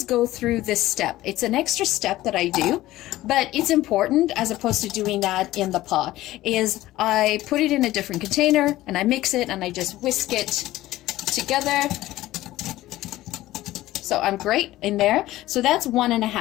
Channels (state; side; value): quieter; right; 16.1 dB